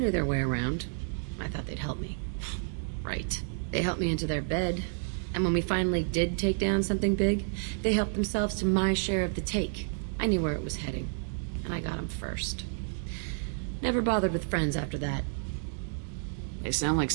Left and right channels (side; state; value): left; silent; digital silence